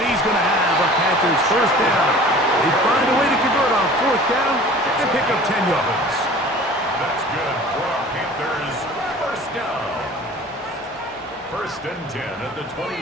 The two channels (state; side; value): normal; both; correlation 0.44